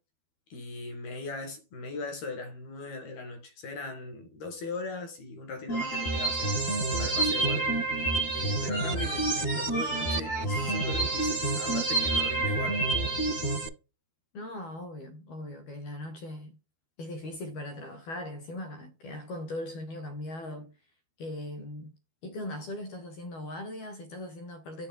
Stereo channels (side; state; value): right; late; 12 ms